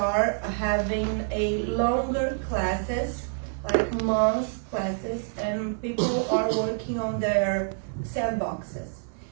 having a longer classes, like months classes, and people are working on their sandboxes.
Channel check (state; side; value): silent; left; 60 dB below the other